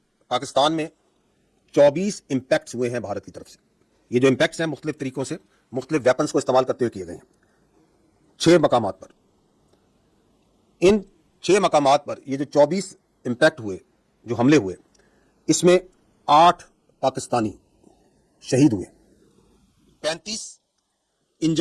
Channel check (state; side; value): identical; both; correlation 1.00